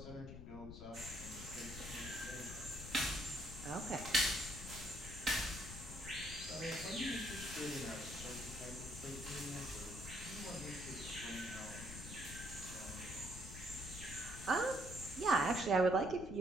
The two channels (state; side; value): noise; left; rumble, 10 dB below the sound